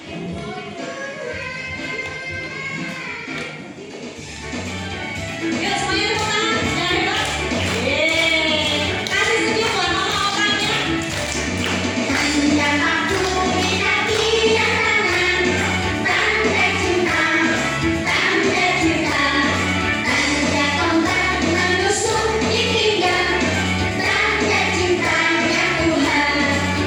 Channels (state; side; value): identical; both; correlation 1.00